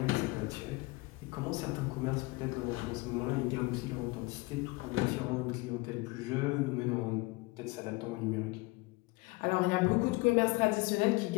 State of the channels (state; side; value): quieter; right; 23.4 dB